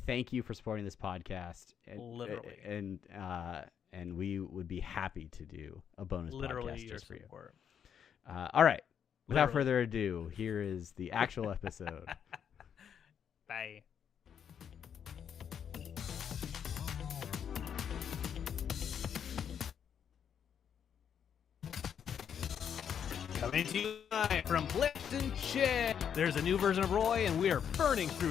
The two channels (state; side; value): quieter; right; 8.2 dB